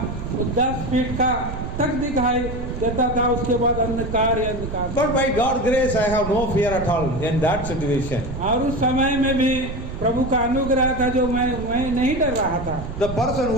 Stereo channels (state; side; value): noise; right; rumble, 8 dB below the sound